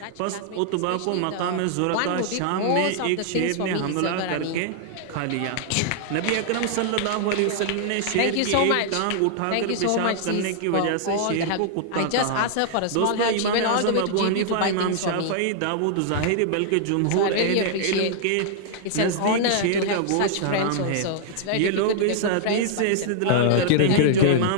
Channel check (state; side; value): different; both; correlation -0.01